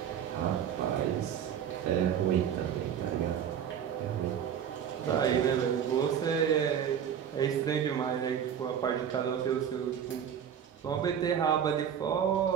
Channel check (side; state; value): left; quieter; 8.7 dB